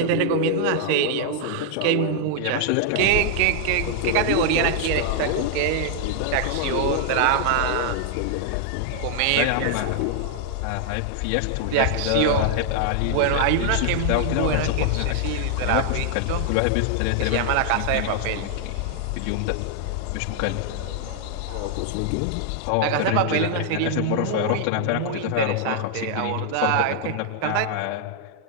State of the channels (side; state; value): both; different; correlation 0.00